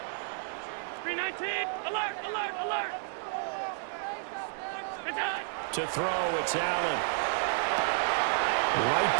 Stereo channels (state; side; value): silent; left; 57 dB below the other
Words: 319, alert! To throw, it's Allen. Right